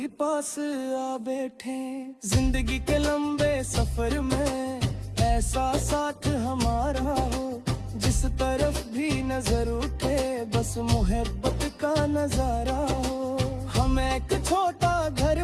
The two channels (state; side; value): identical; both; correlation 1.00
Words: पास आ बैठे। जिंदगी के लंबे सफर में ऐसा साथ हमारा हो, जिस तरफ भी नजर उठे बस मोहब्बत का नजारा हो। हम एक छोटा घर